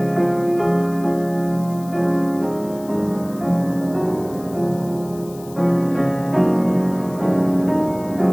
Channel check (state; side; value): noise; left; hiss, 21 dB below the sound